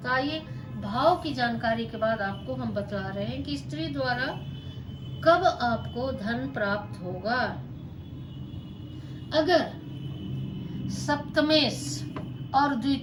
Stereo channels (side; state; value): both; identical; correlation 1.00